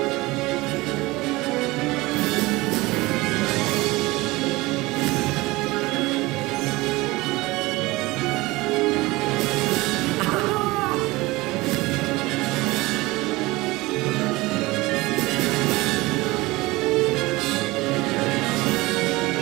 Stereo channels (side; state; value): left; quieter; 21.1 dB